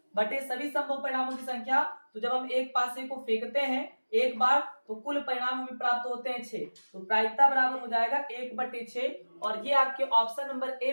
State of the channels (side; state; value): both; inverted; correlation -1.00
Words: बटे सभी संभव परिणामों की संख्या। तो जब हम एक पासे को फेंकते हैं एक बार तो कुल परिणाम हमें प्राप्त होते हैं 6। तो प्रायिकता बराबर हो जाएगा 1/6, और ये आपके ऑप्शन नंबर ए